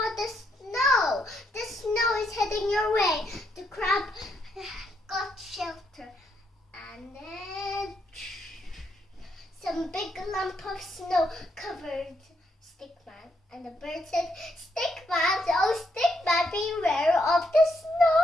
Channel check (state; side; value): normal; both; correlation 0.77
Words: the snow! The snow is heading your way." The crab got shelter, and then some big lump of snow covered Stickman, and the bird said, "Stickman, oh Stickman, beware of the